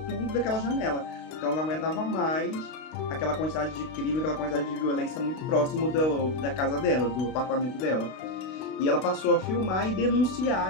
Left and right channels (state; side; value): late; right; 32 ms